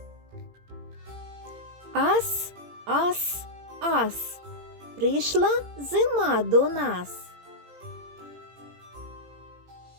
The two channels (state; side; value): late; left; 17 ms